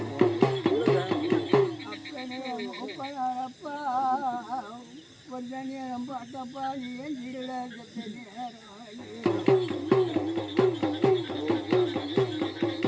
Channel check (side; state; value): both; identical; correlation 1.00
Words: அப்பனே ஒப்பனாரப்பா கொஞ்ச நேரம் பார்த்தப்பா நீ ஏன் இருட சத்த நேரம்